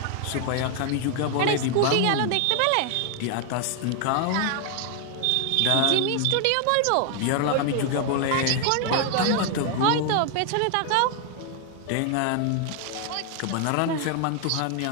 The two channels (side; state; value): both; different; correlation 0.00